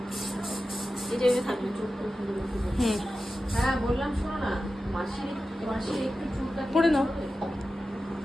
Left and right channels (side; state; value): both; normal; correlation 0.93